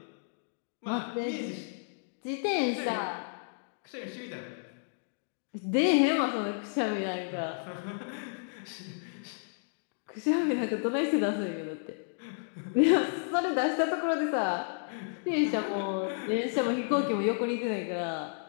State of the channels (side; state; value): right; silent; digital silence